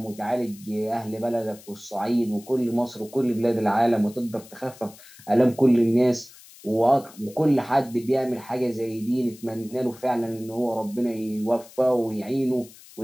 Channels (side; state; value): left; noise; hiss, 21 dB below the sound